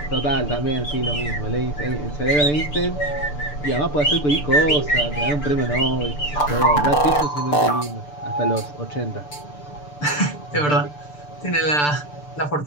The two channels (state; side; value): late; right; 6.8 ms